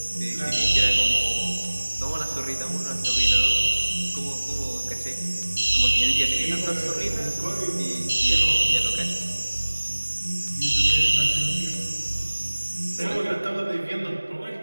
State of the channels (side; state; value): both; inverted; correlation -1.00